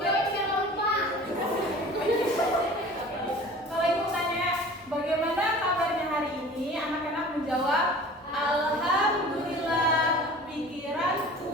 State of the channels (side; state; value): both; normal; correlation 0.43